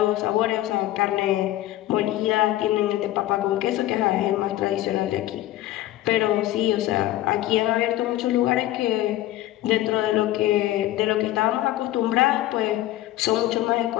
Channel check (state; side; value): quieter; right; 14.8 dB